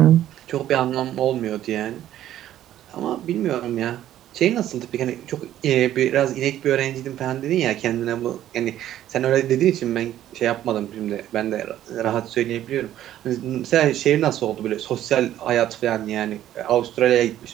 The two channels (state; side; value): quieter; left; 12.3 dB